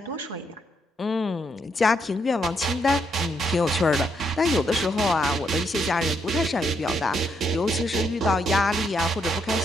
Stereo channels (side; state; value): both; normal; correlation 0.76